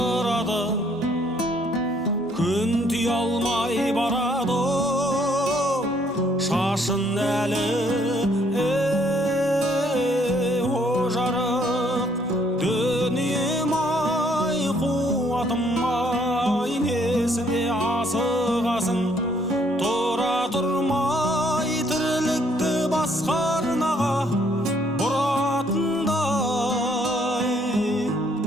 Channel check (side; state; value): both; normal; correlation 0.66